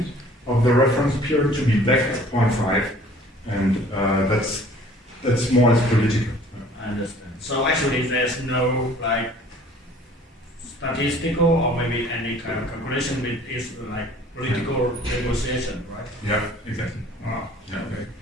of the reference period, to be back at 0.5, and that's more or less political. I understand. So actually, there's no like statistical or maybe any kind of calculation with this like political negotiation, right? Yeah, exactly. Wow. Yeah, okay.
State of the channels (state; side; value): normal; both; correlation 0.52